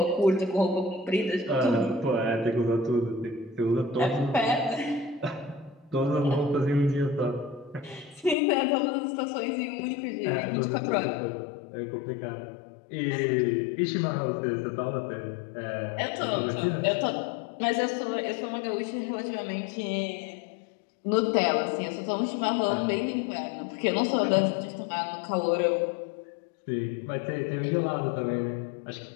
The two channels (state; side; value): drops out; right; at 8.3 s